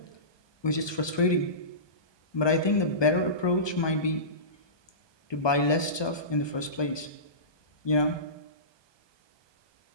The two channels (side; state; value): right; late; 1.2 ms